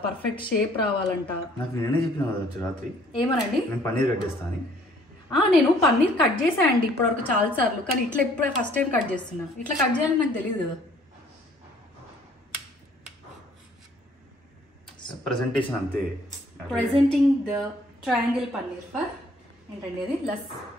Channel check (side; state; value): both; normal; correlation 0.59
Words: పర్ఫెక్ట్ షేప్ రావాలంట. నాకు నేనే చెప్పిన రాత్రి ఏమనండి, నేను పన్నీర్ కట్ చేస్తాను. నేను పన్నీర్ కట్ చేశానండి ఇప్పటివరకు చాలా సార్లు, కానీ ఇట్లా ఇప్పుడే ఫస్ట్ టైం కట్ చేస్తున్నా. ఇట్లా కట్ చేయాలని నాకు తెలియదు కదా. ప్రెజెంటేషన్ అంతే. Presenting the triangle paneer for ఏంటండి అది,